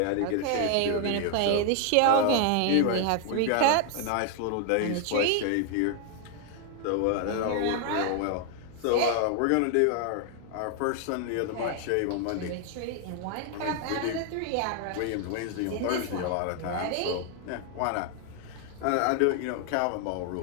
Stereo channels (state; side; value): different; both; correlation 0.00